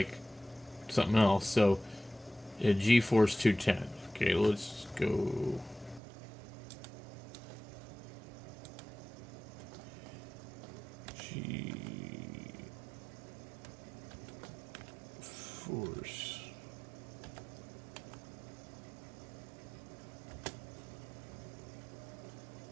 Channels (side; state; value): left; drops out; at 6.0 s